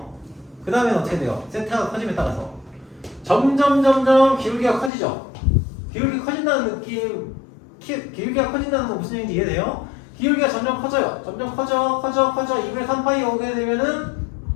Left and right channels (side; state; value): right; drops out; at 4.9 s